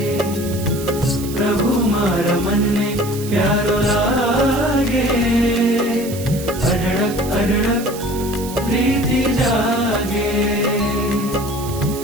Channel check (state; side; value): noise; right; hiss, 13 dB below the sound